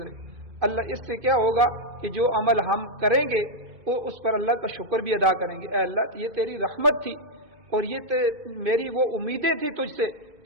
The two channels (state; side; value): late; left; 2.5 ms